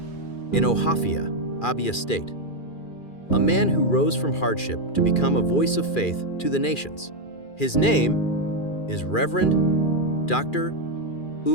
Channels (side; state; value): right; late; 2.4 ms